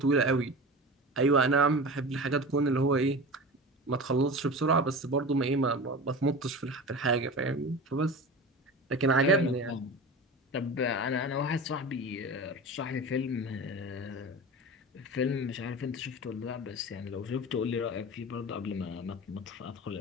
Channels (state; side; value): normal; both; correlation 0.31